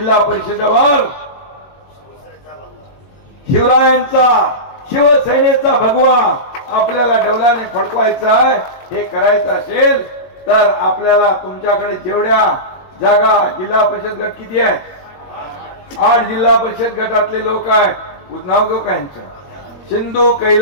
परिषदेवर शिवरायांचा, शिवसेनेचा भगवा आपल्याला डौलाने फडकवायचा आहे. हे करायचं असेल तर आपल्याला तुमच्याकडे जेवढ्या जागा, जिल्हा परिषद गट किती आहेत? 8 जिल्हा परिषद गटातले लोक आहेत. नाव घेऊ का यांचं? सिंधू,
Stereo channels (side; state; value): right; late; 21 ms